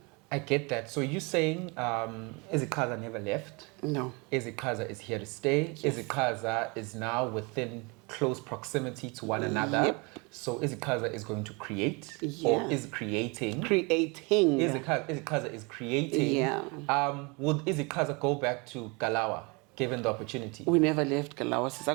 I get that. So you're saying Iziqhaza never left? No. Iziqhaza is here to stay. Yes. Iziqhaza is now within close proximity to one another. Yep. So Iziqhaza is going to create Yeah. or is creating. Creating. Iziqhaza is creating. Yeah. Would Iziqhaza go back to Galawa given the opportunity? We never left Galawa.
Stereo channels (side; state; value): left; quieter; 29.2 dB